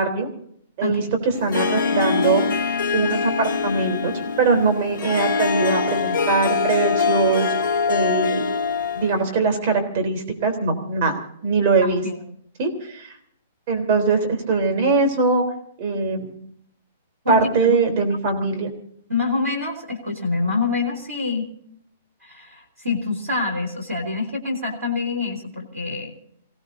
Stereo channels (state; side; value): inverted; both; correlation -0.42